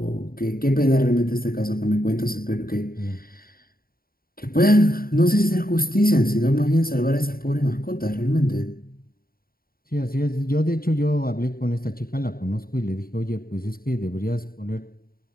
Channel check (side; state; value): right; late; 0.43 ms